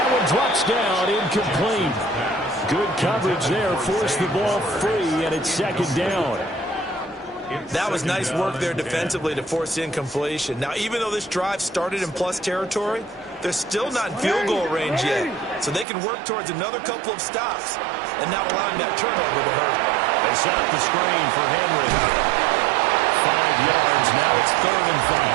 one drops down, incomplete. Good coverage there, forced the ball free, and it's second down. That was nice work there defensively to force incompletion. Now, even though this drive started in plus territory, they're still not in field goal range yet. So they can work towards another couple of stops and not allowing that turnover to hurt. They set up the screen for Henry. 5 yards, now it's 3rd and 5.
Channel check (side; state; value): left; drops out; at 15.9 s